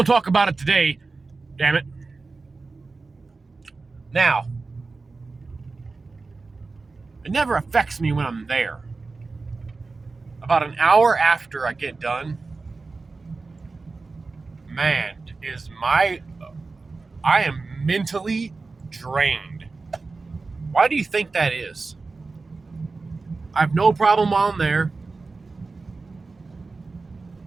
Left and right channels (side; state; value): left; quieter; 3.9 dB